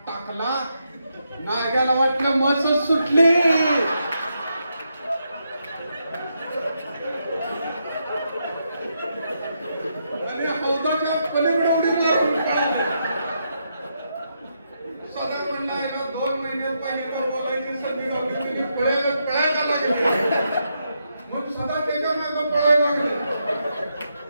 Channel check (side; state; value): both; inverted; correlation -0.81